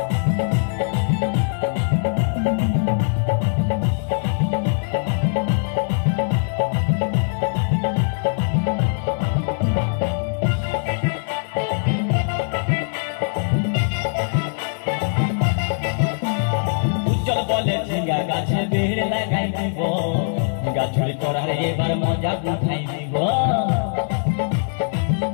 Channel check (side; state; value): right; silent; digital silence